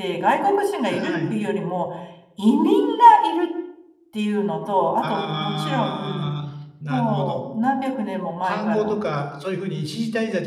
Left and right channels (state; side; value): identical; both; correlation 1.00